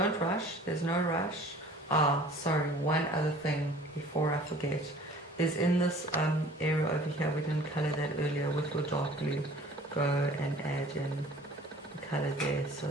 rush, there's no rush. Sorry, one other thing before I forget is in this area over here, we didn't color that earlier with your dark blue. Go and add in the color there so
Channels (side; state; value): both; normal; correlation 0.48